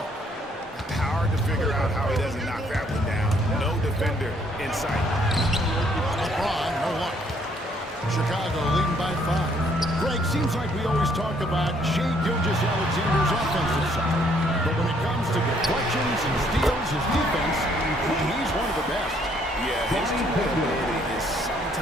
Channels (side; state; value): both; normal; correlation 0.66